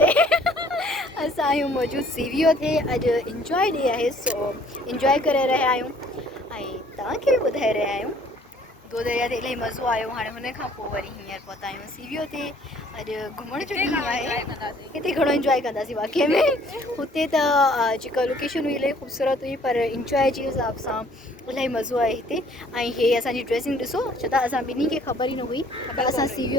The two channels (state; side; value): normal; both; correlation 0.58